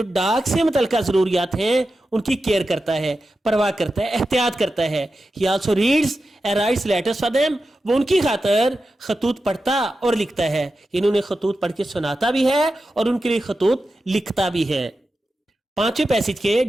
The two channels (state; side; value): normal; both; correlation 0.91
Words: डाक से मुतल्लिका जरूरियात हैं उनकी केयर करता है, परवाह करता है, एहतियात करता है। ही also reads and rights letters for them, वो उनकी खातर खतूत पढ़ता और लिखता है। इन्होंने खतूत पढ़ के सुनाता भी है और उनके लिए खतूत लिखता भी है। 5वें पैसेज के